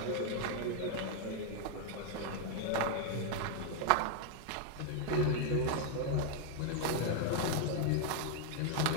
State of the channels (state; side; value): different; both; correlation 0.00